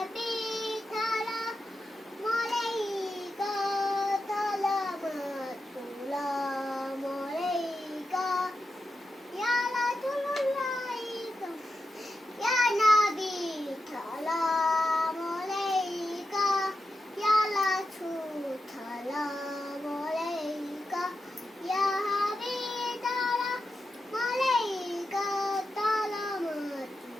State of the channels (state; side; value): normal; both; correlation 0.88